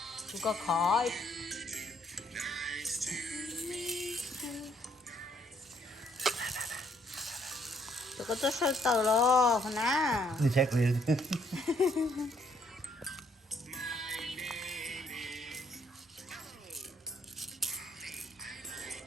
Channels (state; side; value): normal; both; correlation 0.68